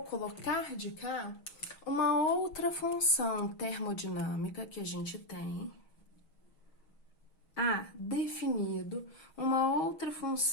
colocar de cá uma outra função termodinâmica que a gente tem. Definido uma outra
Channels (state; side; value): late; right; 6.3 ms